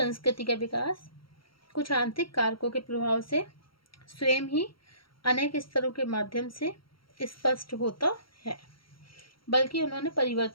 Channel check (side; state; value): right; late; 0.74 ms